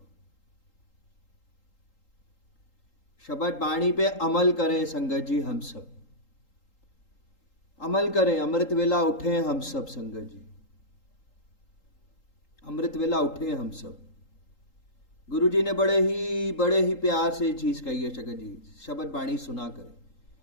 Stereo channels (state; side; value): late; right; 3.8 ms